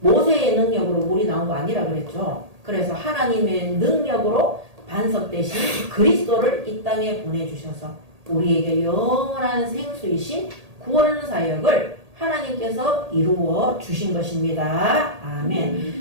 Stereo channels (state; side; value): late; left; 1.8 ms